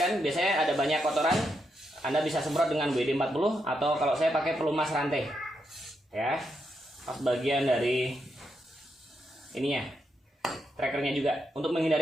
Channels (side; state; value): both; normal; correlation 0.82